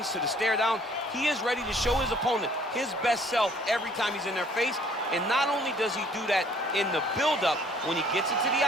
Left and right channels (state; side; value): normal; both; correlation 0.58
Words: to the stare down. He is ready to show his opponent his best self every time he's in their face. And not only does he do that in the build-up, when he gets into the